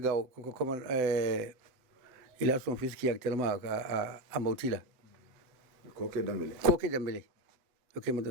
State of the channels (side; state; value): left; late; 7.8 ms